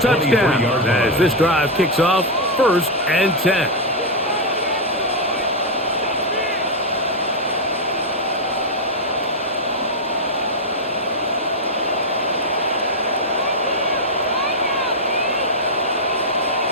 touchdowns as this drive kicks off 1st and 10.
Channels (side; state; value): both; normal; correlation 0.01